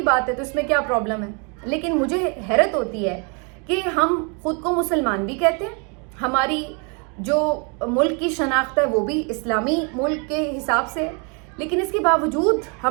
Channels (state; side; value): quieter; left; 35.1 dB